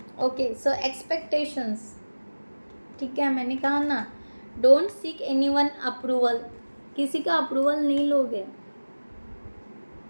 ओके। सो एक्सपेक्टेशंस, ठीक है, मैंने कहा ना, डोंट सीक एनीवन अप्रूवल, किसी का अप्रूवल नहीं लोगे,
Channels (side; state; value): both; inverted; correlation -1.00